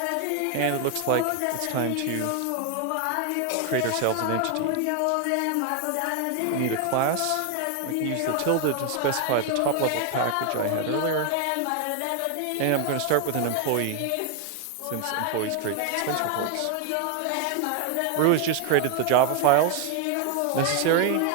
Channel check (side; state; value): both; different; correlation 0.00